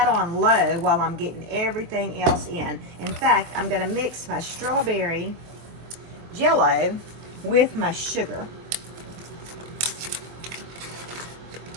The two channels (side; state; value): left; late; 23 ms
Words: on low while I'm getting everything else in. In fact, I'm going to mix my strawberry Jello with my sugar.